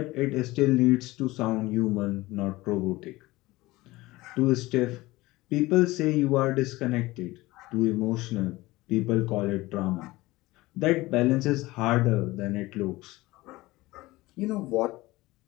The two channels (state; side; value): quieter; right; 19.7 dB